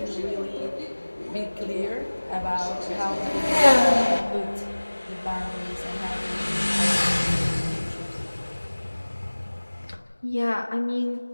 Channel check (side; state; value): both; inverted; correlation -1.00